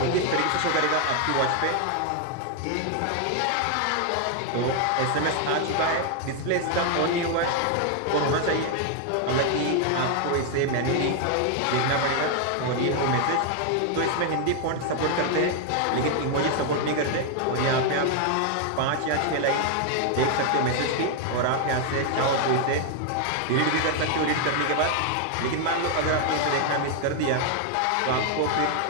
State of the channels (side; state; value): both; different; correlation 0.00